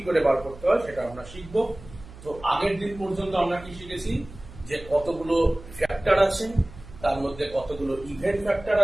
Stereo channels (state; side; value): noise; right; hum, 18 dB below the sound